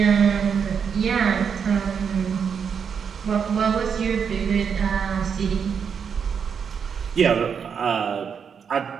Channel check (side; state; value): left; quieter; 6.8 dB